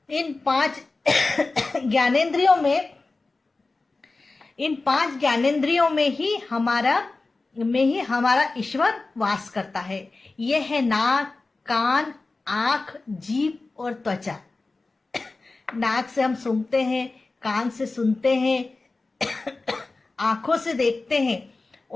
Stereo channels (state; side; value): quieter; right; 3.5 dB